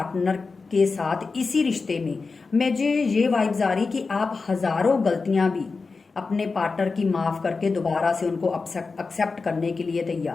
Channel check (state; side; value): quieter; right; 4.3 dB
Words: के साथ इसी रिश्ते में, मुझे ये वाइब्स आ रही कि आप हजारों गलतियां भी अपने पार्टनर की माफ करके दोबारा से उनको एक्सेप्ट करने के लिए